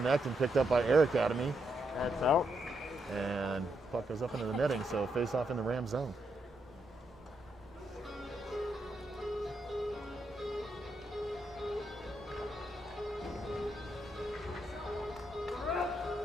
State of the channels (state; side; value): normal; both; correlation 0.80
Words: and picked up by Air Academy. That's out. And puck goes up into the netting, so face off in the Ram zone.